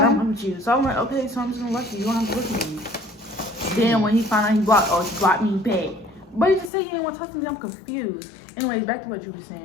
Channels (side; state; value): right; drops out; at 6.7 s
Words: don't want you. So I'm like, okay, so I'm just gonna let you. You don't have to look at me. Then when he found out he blocked me back. But he just said he didn't want to talk to me. I'm confused. Anyways, back to what you were